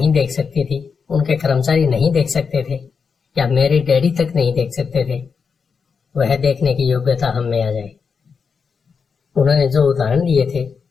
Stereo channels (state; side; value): quieter; right; 5.7 dB